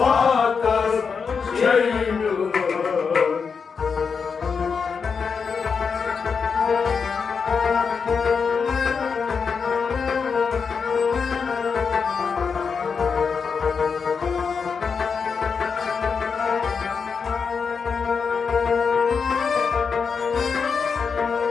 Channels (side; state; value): right; quieter; 5.7 dB